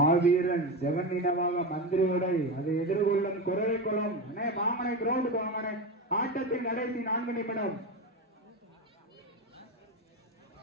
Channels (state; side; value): normal; both; correlation 0.19